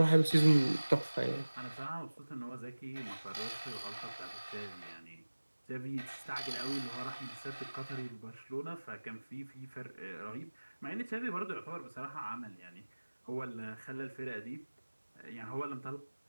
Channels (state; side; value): inverted; both; correlation -1.00